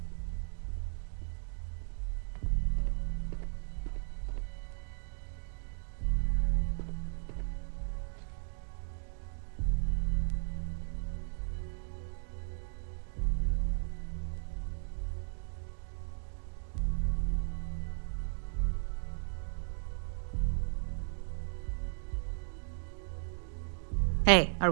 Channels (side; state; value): left; silent; digital silence